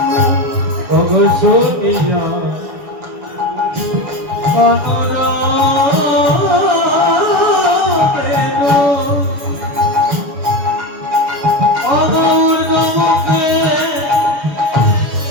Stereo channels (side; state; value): left; late; 6.8 ms